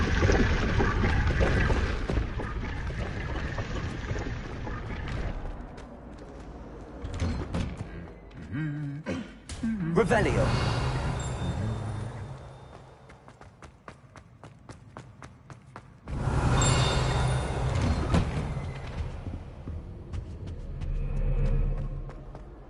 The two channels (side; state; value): both; identical; correlation 1.00